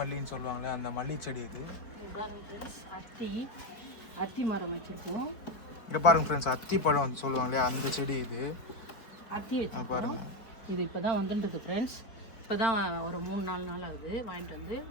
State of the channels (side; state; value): right; late; 4.6 ms